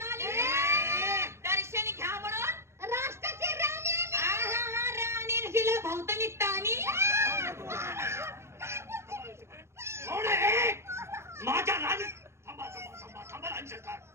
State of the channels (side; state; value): left; late; 0.13 ms